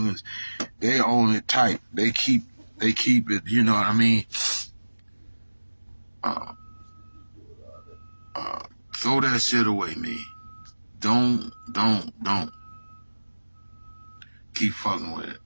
they own it tight. They keep it, you know what I mean? Throw that shit away, man. Don't keep fucking with it.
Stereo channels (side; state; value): both; inverted; correlation -1.00